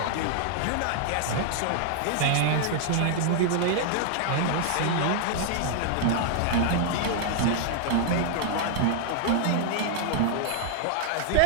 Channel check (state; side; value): different; both; correlation 0.00